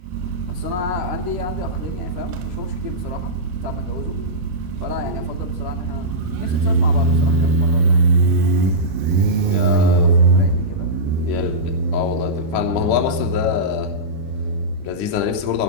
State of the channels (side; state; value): left; late; 12 ms